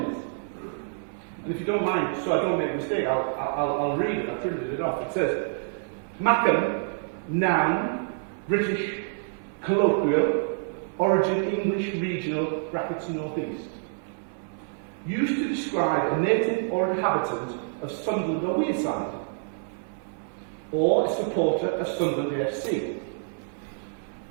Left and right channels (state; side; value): silent; left; 60 dB below the other